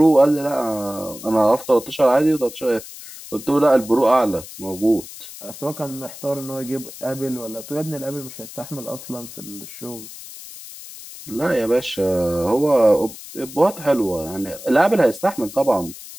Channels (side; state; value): left; noise; hiss, 14 dB below the sound